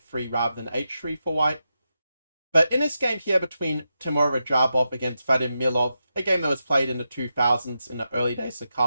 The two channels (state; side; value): inverted; both; correlation -0.88